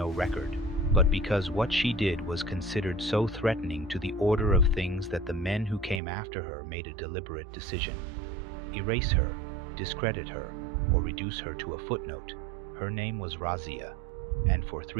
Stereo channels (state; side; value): drops out; left; at 6.0 s